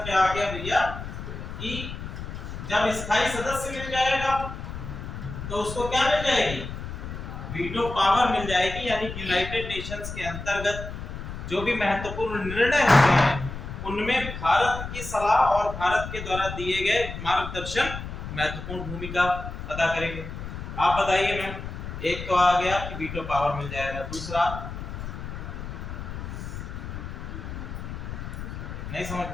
क्या आ गया भैया कि जब स्थायी सदस्य मिल जाएगा तो उसको क्या मिल जाएगी, वीटो पावर मिल जाएगी। यानी यूनाइटेड नेशंस के अंतर्गत जो भी महत्वपूर्ण निर्णय होते हैं उनमें भारत की सलाह और भारत के द्वारा दिए गए मार्गदर्शन महत्वपूर्ण भूमिका अदा करेंगे। आप बताइए मैम। एक तो आ गया कि वीटो पावर मिल जाएगा, दूसरा नहीं समझ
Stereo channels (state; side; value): noise; left; rumble, 8 dB below the sound